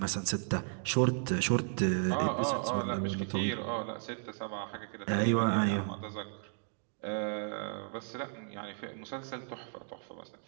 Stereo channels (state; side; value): silent; left; 55 dB below the other